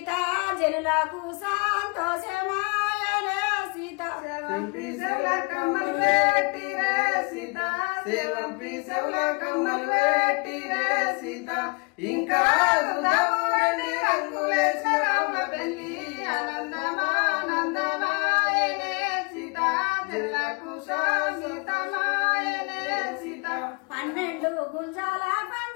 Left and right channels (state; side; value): quieter; right; 31.6 dB